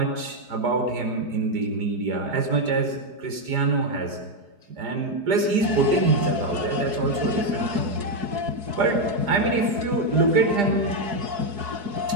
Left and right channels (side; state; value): left; late; 5.0 ms